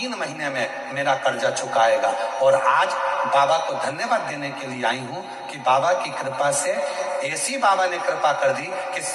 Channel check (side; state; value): both; identical; correlation 1.00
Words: महीने में मेरा कर्जा चुकाएगा। और आज बाबा को धन्यवाद देने के लिए आई हूं कि बाबा की कृपा से ऐसी बाबा ने कृपा कर दी कि